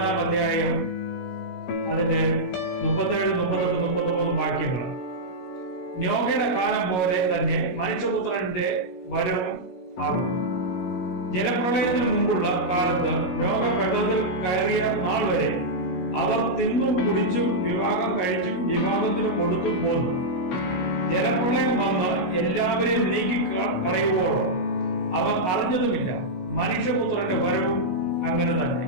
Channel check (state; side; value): late; right; 16 ms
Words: അധ്യായം അതിന്റെ 37, 38, 39 വാക്യങ്ങൾ. നോഹയുടെ കാലം പോലെ തന്നെ മനുഷ്യപുത്രന്റെ വരവും ആകും. ജലപ്രളയത്തിന് മുമ്പുള്ള കാലത്ത് നോഹ പെട്ടകത്തിൽ കയറിയ നാൾ വരെ അവർ തിന്നും കുടിച്ചും വിവാഹം കഴിച്ചും വിവാഹത്തിന് കൊടുത്തും പോന്നു. ജലപ്രളയം വന്ന് എല്ലാവരെയും നീക്കി കളയുവോളോ അവർ അറിഞ്ഞതുമില്ല. മനുഷ്യപുത്രന്റെ വരവും അങ്ങനെ തന്നെ